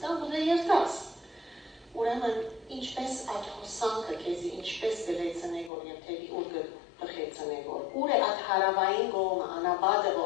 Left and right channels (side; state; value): right; drops out; at 5.7 s